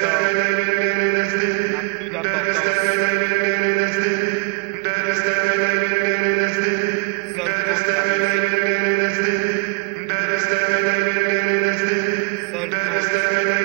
n'a plus d'importance. Seul compte la musique. Seul compte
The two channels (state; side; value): quieter; left; 32.2 dB